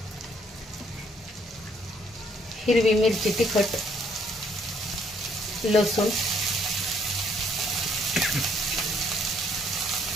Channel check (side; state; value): both; normal; correlation 0.67